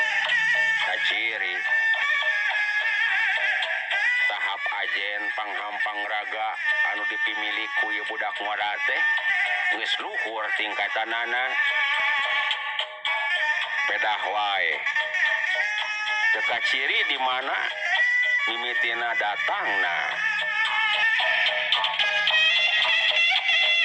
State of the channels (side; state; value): both; identical; correlation 1.00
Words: Ciri tahap ajen panghampang raga anu dipimili ku ieu budak ngora teh geus luhur tingkatanana. Pedah wae teu kaciri di mana mimitina datang nah